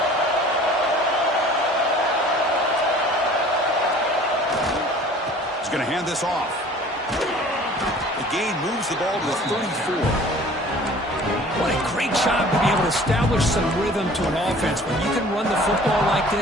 He's going to hand this off. The gain moves the ball to the 34. What a great job to be able to establish some rhythm to an offense. When you can run the football like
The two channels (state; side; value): normal; both; correlation 0.48